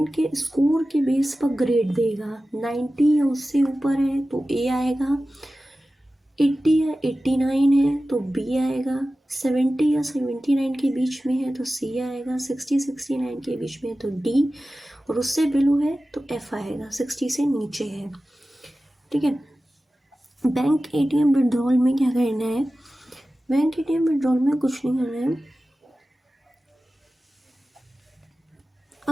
के स्कोर के बेस पर ग्रेड देगा. 90 या उससे ऊपर है तो ए आएगा, 80 या 89 है तो बी आएगा, 70 या 79 के बीच में है तो सी आएगा, 60 69 के बीच में है तो डी, और उससे बिलो है तो एफ आएगा. 60 से नीचे है. ठीक है. बैंक एटीएम विड्रॉल में क्या करना है. बैंक एटीएम विड्रॉल में कुछ नहीं करना है.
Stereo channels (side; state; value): both; normal; correlation 0.95